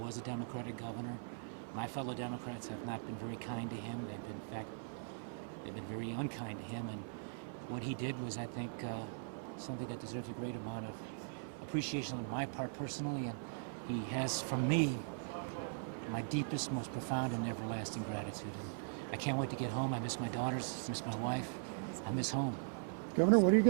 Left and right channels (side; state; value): left; silent; 51 dB below the other